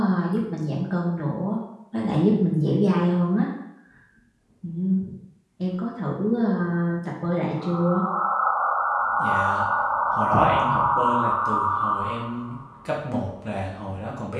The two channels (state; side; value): identical; both; correlation 1.00